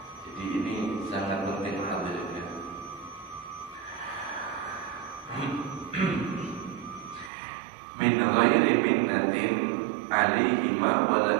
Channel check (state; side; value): drops out; left; at 7.3 s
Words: Jadi ini sangat penting hadirin. Min ghairi minnatin alaihima wala